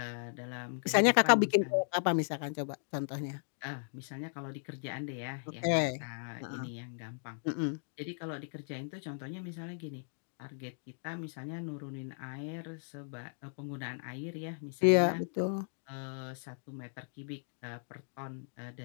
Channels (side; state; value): right; silent; digital silence